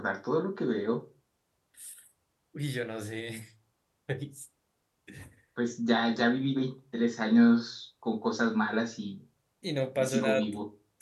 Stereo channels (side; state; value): both; identical; correlation 1.00